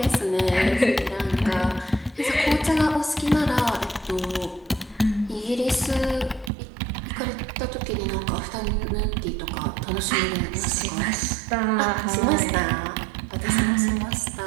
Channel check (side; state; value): left; drops out; at 6.5 s